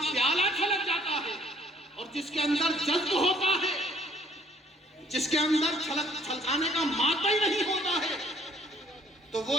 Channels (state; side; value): normal; both; correlation 0.61